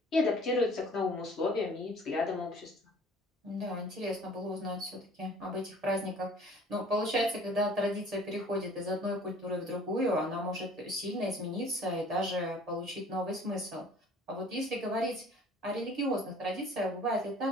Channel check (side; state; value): both; normal; correlation 0.51